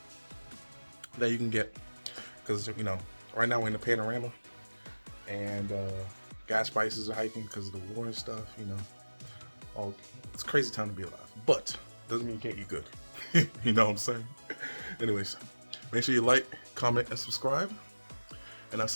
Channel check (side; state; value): both; inverted; correlation -1.00